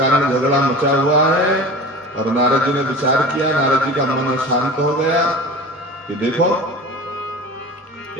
झगड़ा मचा हुआ है। और नारद जी ने विचार किया, नारद जी का मन शांत हो गया कि देखो,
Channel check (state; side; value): normal; both; correlation 0.35